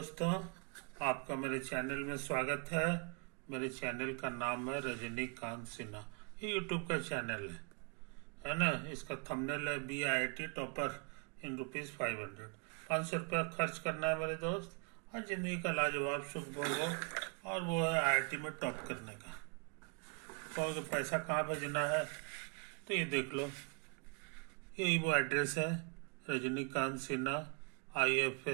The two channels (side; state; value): left; quieter; 37.6 dB